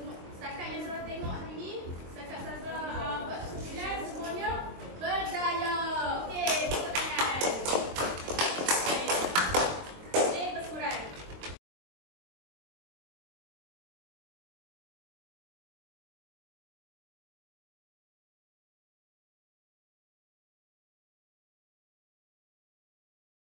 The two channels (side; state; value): left; late; 22 ms